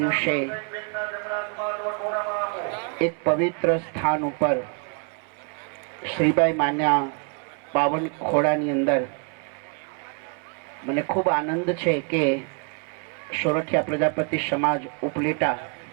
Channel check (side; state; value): left; quieter; 39.0 dB